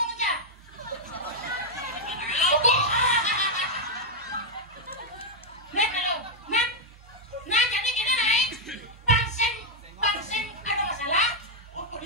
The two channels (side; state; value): both; normal; correlation -0.01